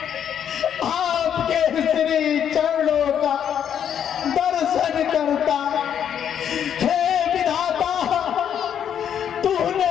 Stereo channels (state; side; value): quieter; right; 8.9 dB